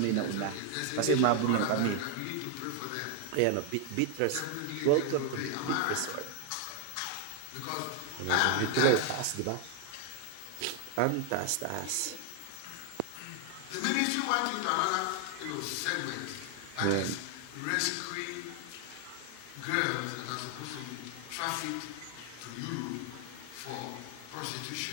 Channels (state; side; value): different; both; correlation 0.00